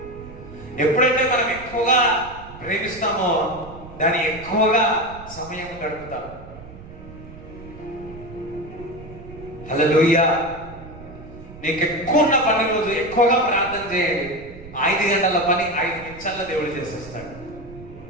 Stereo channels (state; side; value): noise; right; rumble, 16 dB below the sound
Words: ఎప్పుడైతే మనం ఎక్కువగా ప్రేమిస్తామో దాన్ని ఎక్కువగా సమయం గడుపుతాం. హల్లెలూయా. నీకు ఎక్కువ ఉన్న పని రోజు ఎక్కువగా ప్రార్థన చేయండి. 5 గంటల పని 5 నిమిషాల్లో దేవుడు చేసేస్తాడు.